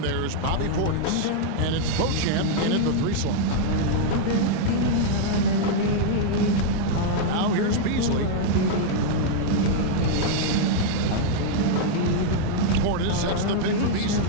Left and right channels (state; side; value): different; both; correlation -0.01